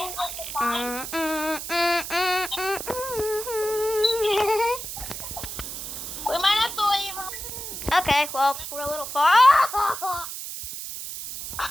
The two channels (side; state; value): right; noise; hiss, 7 dB below the sound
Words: the sign? We might have to leave. Okay, well, we're a little far.